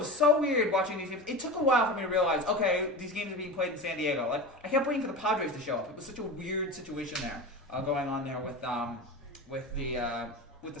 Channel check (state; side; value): normal; both; correlation 0.28